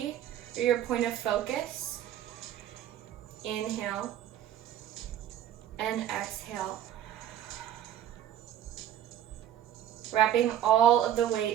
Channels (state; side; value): quieter; left; 11.3 dB